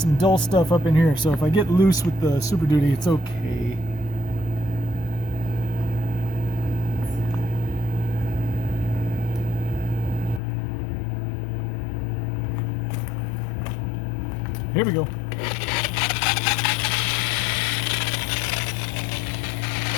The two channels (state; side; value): drops out; right; at 10.4 s